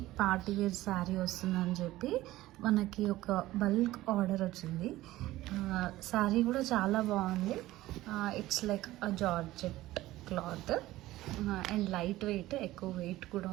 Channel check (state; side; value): quieter; left; 16.6 dB